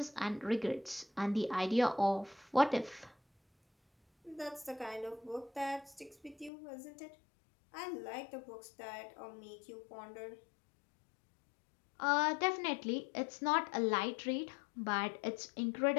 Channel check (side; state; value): right; drops out; at 6.5 s